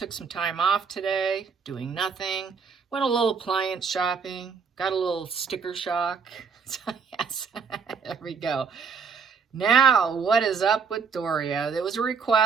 some time off today, doing nothing. Went a little appliance shopping, got a little sticker shock. So yes, there we go. Now, what is up with Doria? There was a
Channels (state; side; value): quieter; left; 5.9 dB